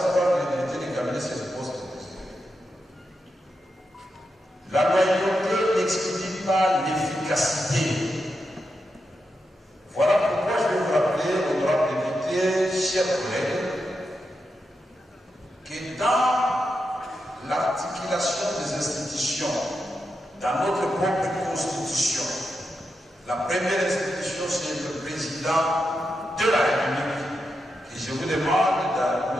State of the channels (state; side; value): normal; both; correlation 0.87